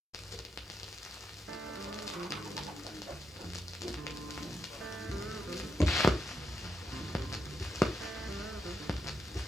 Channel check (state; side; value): normal; both; correlation 0.82